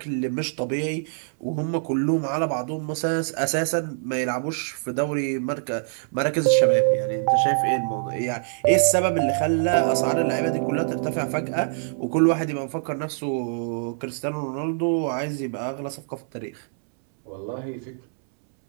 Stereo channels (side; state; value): left; silent; 62 dB below the other